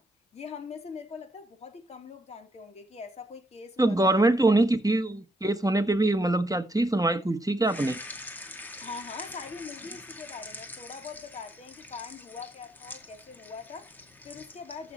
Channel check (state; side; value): normal; both; correlation 0.75